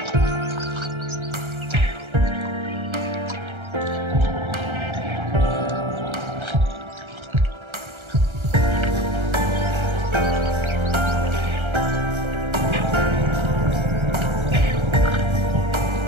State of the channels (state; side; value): late; left; 1.3 ms